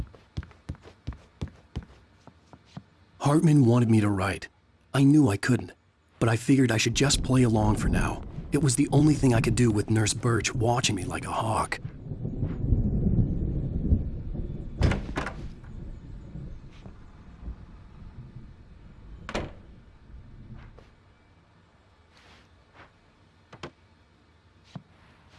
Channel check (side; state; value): both; identical; correlation 1.00